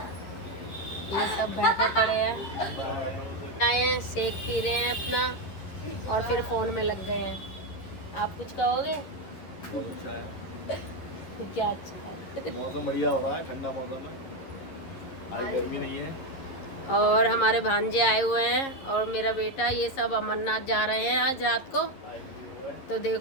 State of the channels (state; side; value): late; right; 11 ms